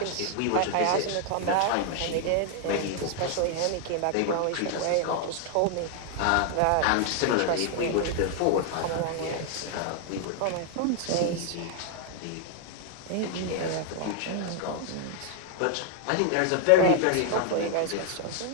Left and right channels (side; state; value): both; different; correlation 0.00